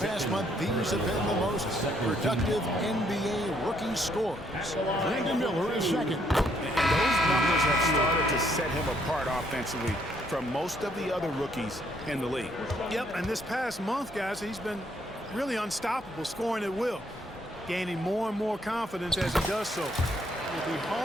month, these have been the most productive NBA rookie scores. Brandon Miller is second. And those numbers have started to set him apart offensively from most of the other rookies in the league. Yep, and this past month, guys, he's been really unstoppable, scoring at will, gaining more and more confidence as he does so. It'll be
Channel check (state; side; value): normal; both; correlation 0.70